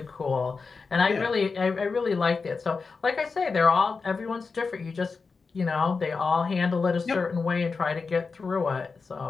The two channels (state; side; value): quieter; right; 4.6 dB